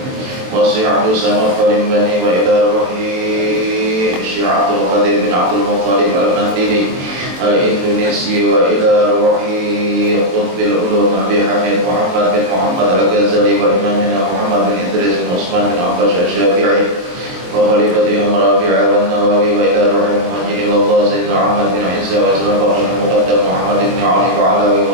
والشيخ عبد الصمد البني وإلى روحه الشيخ عبد القادر بن عبد المطلب المندلي الإندونيسي وإلى روحه قطب العلوم أبي حميد محمد بن محمد الغزالي وإمامنا محمد بن إدريس بن عثمان بن عباس الشافعي وخليفتهم رافع والنووي وإلى روح المهاجر إلى الله سيدنا محمد بن عيسى وسلم بقي المقدم محمد بن علي وعلى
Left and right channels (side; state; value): left; late; 23 ms